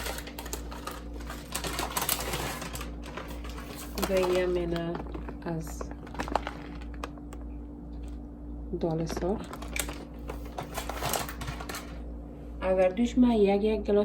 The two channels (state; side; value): identical; both; correlation 1.00